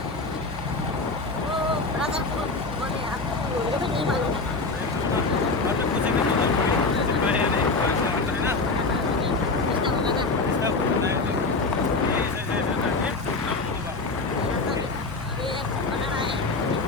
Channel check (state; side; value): quieter; right; 3.6 dB